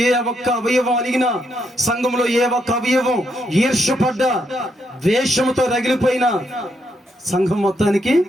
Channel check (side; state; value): both; normal; correlation 0.78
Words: ఏ ఒక్క అవయవం అలిగినా, సంఘంలో ఏ ఒక్క అవయవం ఈర్ష్యపడ్డ వేషముతో రగిలిపోయిన సంఘం మొత్తానికి